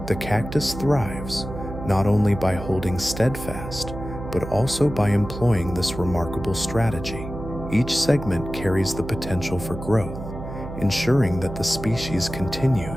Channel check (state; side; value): noise; right; hum, 10 dB below the sound